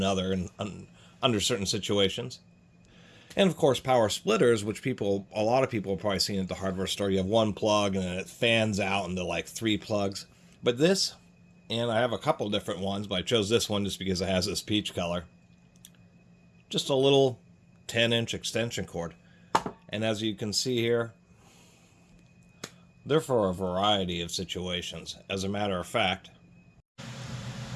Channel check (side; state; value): both; identical; correlation 1.00